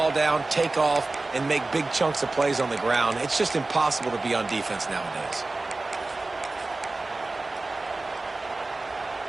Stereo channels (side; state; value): left; quieter; 3.2 dB